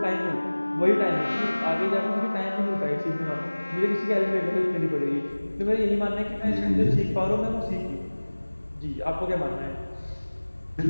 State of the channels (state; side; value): inverted; both; correlation -1.00